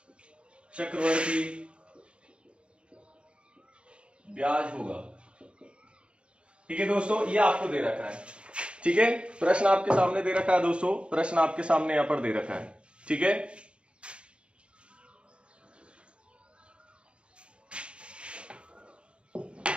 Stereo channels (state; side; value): late; left; 0.057 ms